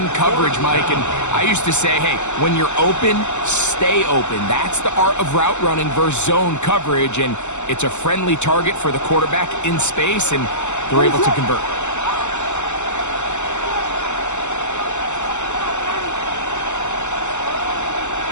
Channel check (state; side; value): late; right; 0.83 ms